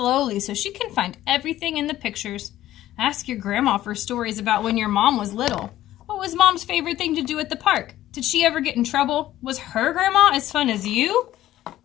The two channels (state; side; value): quieter; right; 13.9 dB